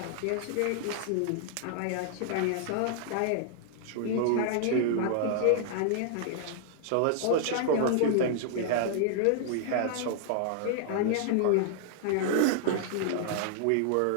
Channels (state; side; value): different; both; correlation -0.01